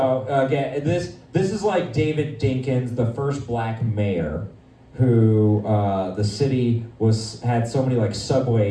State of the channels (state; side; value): identical; both; correlation 1.00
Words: again, this is like David Dinkins, the first black mayor, who the city had so many like